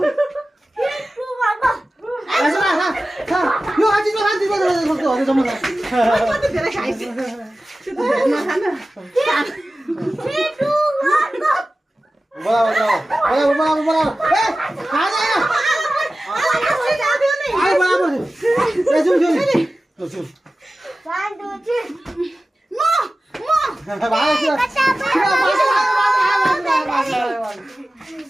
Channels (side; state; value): both; normal; correlation 0.95